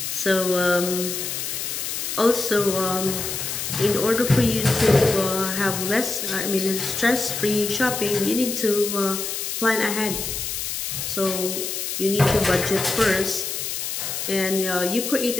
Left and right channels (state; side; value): noise; left; hiss, 4 dB below the sound